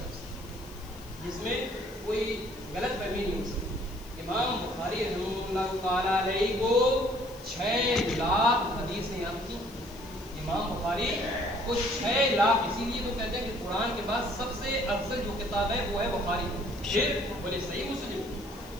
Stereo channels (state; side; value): noise; left; hiss, 22 dB below the sound